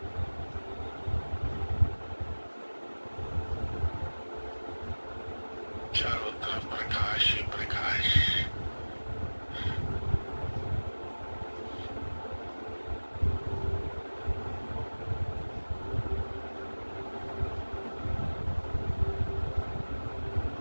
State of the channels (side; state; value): both; inverted; correlation -1.00